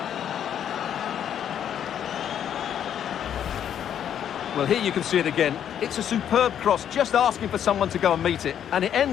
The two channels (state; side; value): quieter; right; 9.4 dB